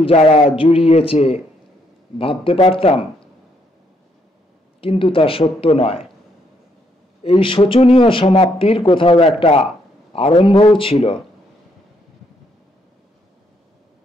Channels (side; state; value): both; normal; correlation 0.73